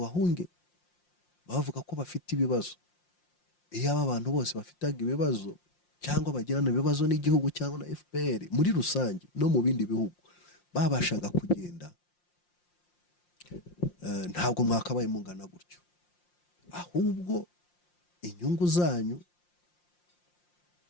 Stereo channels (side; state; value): right; late; 5.7 ms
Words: bavuga ko bafite ibibazo. Iyo aba bantu bose bafitaga ibibazo cyangwa bagirana ibibazo n'igihugu cyangwa na FPR muri rusange no mu bindi bihugu, babashaga kugenda, ntabwo mwakabaye mungana gutyo. Ahubwo inyungu zanyu,